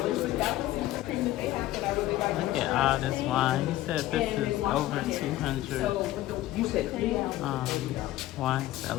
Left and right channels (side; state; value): right; quieter; 15.3 dB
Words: Look at all this wine. He said this is over 200 wine